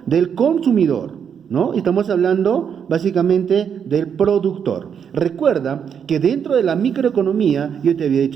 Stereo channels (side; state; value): left; quieter; 7.6 dB